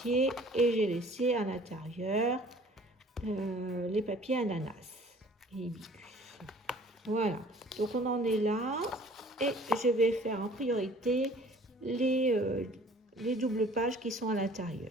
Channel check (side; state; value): both; normal; correlation 0.52